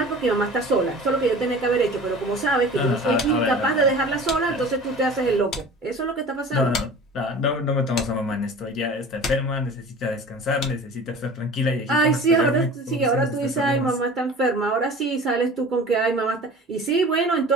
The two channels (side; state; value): both; normal; correlation 0.40